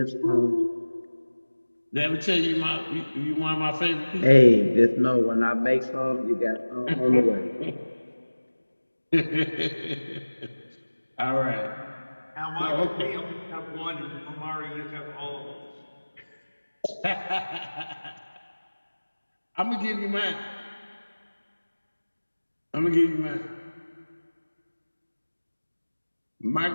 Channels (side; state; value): both; inverted; correlation -1.00